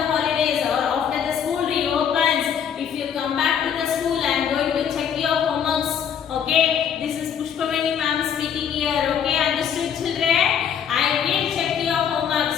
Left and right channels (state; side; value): quieter; right; 8.2 dB